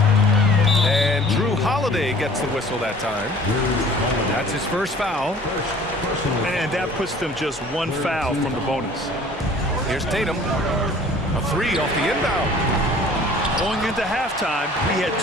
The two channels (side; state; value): both; normal; correlation 0.50